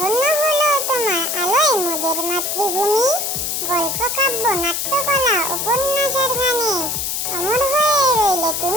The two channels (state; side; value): noise; left; hiss, 1 dB below the sound